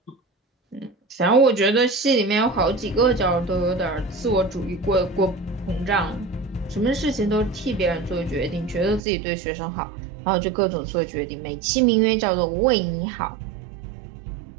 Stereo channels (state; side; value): drops out; left; at 9.0 s